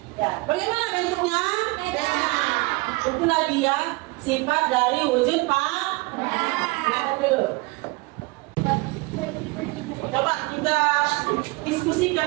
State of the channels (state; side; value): quieter; left; 24.8 dB